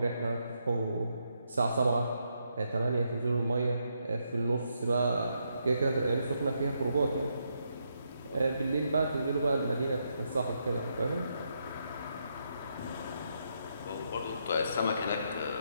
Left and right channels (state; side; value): inverted; both; correlation -0.79